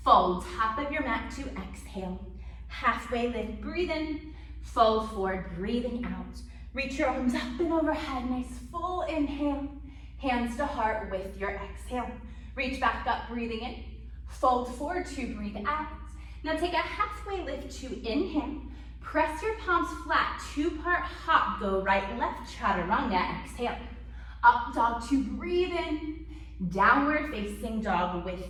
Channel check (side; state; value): both; identical; correlation 1.00